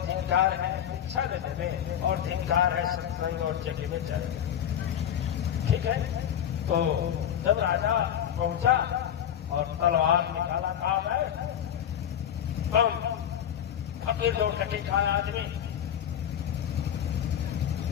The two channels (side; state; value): right; quieter; 9.7 dB